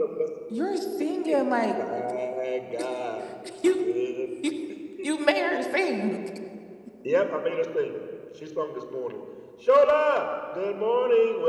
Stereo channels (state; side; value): identical; both; correlation 1.00